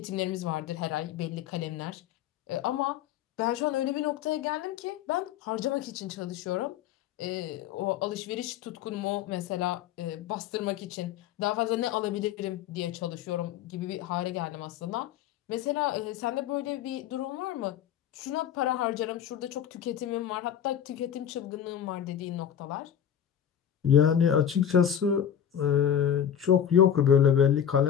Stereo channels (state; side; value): quieter; right; 9.4 dB